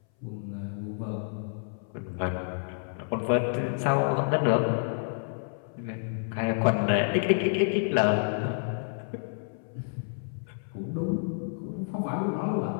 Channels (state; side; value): silent; right; 58 dB below the other